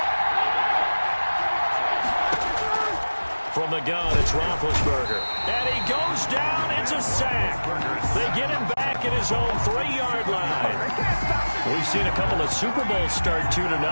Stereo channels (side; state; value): both; inverted; correlation -1.00